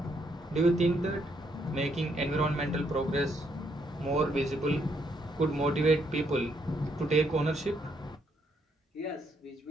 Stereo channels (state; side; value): normal; both; correlation 0.74